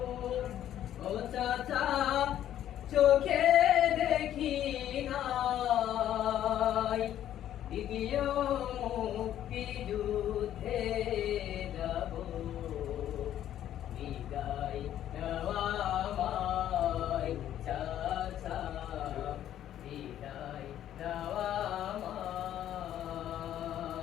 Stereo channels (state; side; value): quieter; right; 11.4 dB